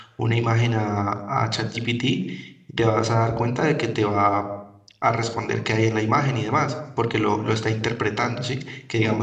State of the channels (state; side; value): identical; both; correlation 1.00